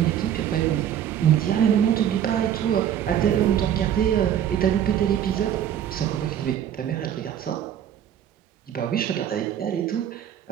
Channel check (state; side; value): quieter; left; 10.0 dB